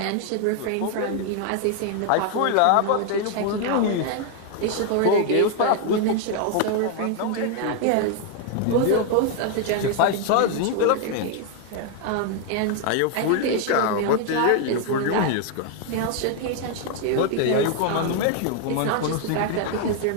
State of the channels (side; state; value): both; different; correlation 0.00